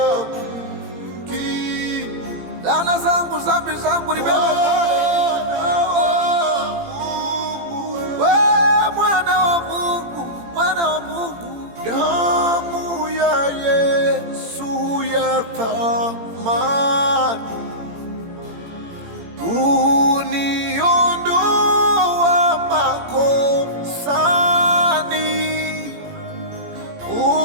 kosa zangu, dhambi zangu nibeba pale. We mwana wa Mungu, mwana wa Mungu, damu ya Yesu ya thamani uniondoa makosani,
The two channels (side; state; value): left; late; 18 ms